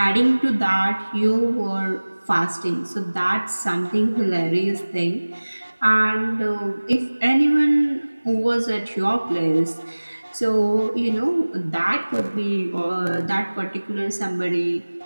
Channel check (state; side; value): inverted; both; correlation -1.00